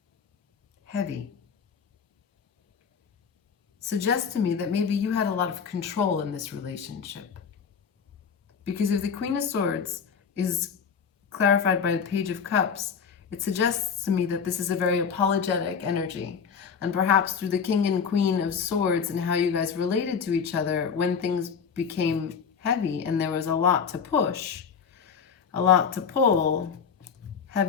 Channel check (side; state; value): right; quieter; 6.5 dB